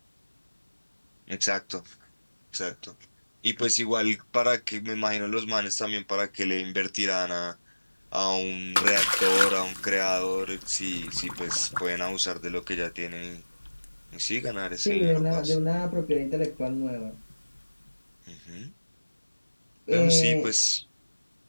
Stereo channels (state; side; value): inverted; both; correlation -1.00